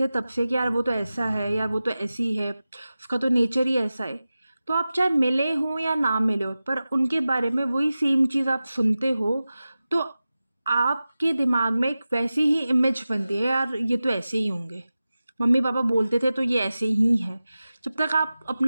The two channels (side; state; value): both; inverted; correlation -0.95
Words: तब से कि यार वो तो ऐसा है, यार वो तो ऐसी है, उसका तो नेचर ही ऐसा है, तो आप चाहे मिले हो या ना मिले हो पर उनके बारे में वही सेम चीज़ आप सुनते हो, तो आपके दिमाग में एक वैसी ही इमेज बनती है, यार ये तो ऐसे ही होंगे, मम्मी पापा बोलते थे तो ये ऐसे ही है, जब तक आप